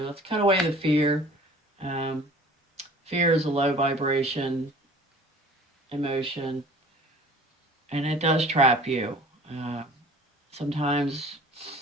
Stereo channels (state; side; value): normal; both; correlation 0.47